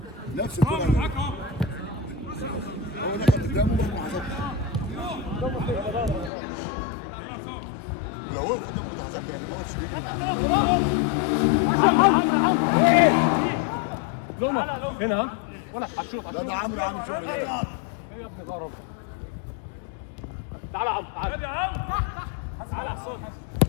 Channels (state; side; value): drops out; right; at 6.3 s